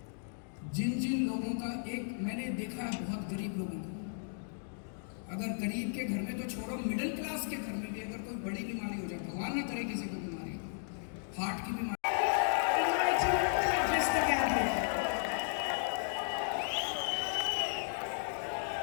जिन जिन लोगों का, एक मैंने देखा है बहुत गरीब लोगों को, अगर गरीब के घर में तो छोड़ो, मिडिल क्लास के घर में भी अगर कोई बड़ी बीमारी हो जाए, भगवान ना करे किसी को बीमारी, हार्ट की बीमारी,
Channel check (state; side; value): silent; right; digital silence